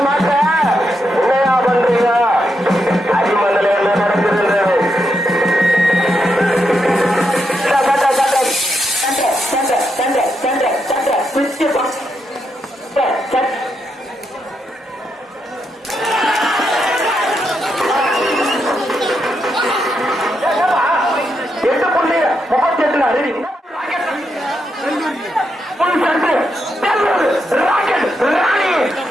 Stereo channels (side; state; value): both; normal; correlation 0.82